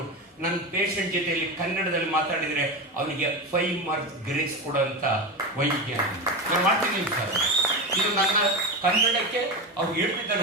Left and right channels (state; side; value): normal; both; correlation 0.20